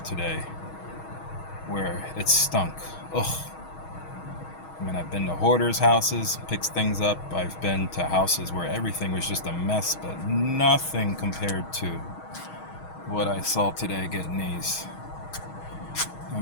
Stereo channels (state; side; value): late; right; 6.3 ms